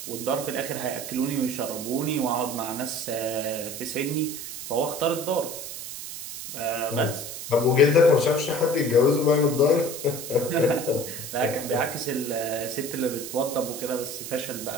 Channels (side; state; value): right; noise; hiss, 9 dB below the sound